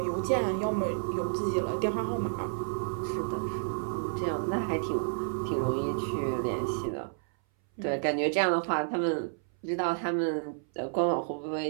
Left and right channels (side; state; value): left; silent; 57 dB below the other